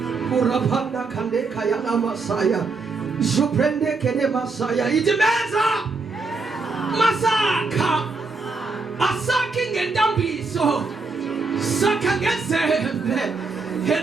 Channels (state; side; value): quieter; left; 4.0 dB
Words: Urapanda kandeka yana masaya. Zuprende kene masaya. Itimeza. Masaka. Asaki ngendambiso. Saka ngezembe.